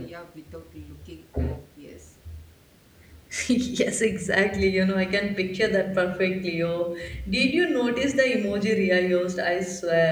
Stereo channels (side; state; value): both; identical; correlation 1.00